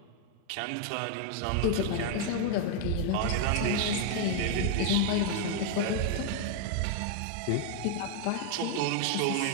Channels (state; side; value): different; both; correlation 0.00